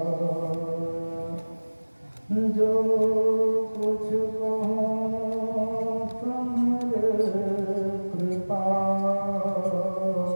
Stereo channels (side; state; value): both; inverted; correlation -1.00